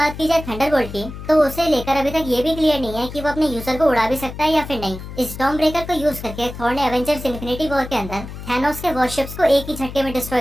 की जाए थंडरबोल्ट की, तो उसे लेकर अभी तक ये भी क्लियर नहीं है कि वो अपने यूजर को उड़ा भी सकता है या फिर नहीं। स्टॉर्म ब्रेकर को यूज करके थॉर ने एवेंजर्स इन्फिनिटी वॉर के अंदर थैनोस के वॉरशिप्स को एक ही झटके में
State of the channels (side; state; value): left; noise; hum, 11 dB below the sound